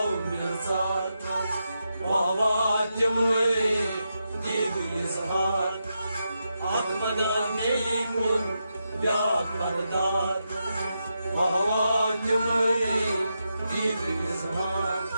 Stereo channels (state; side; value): inverted; both; correlation -0.86